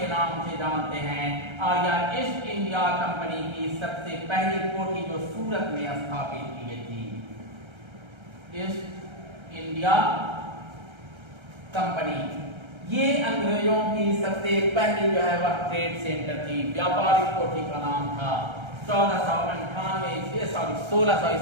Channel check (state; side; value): late; left; 1.3 ms